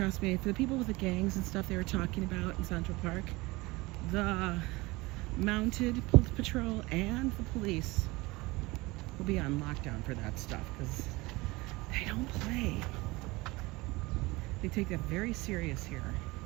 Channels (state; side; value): quieter; left; 22.3 dB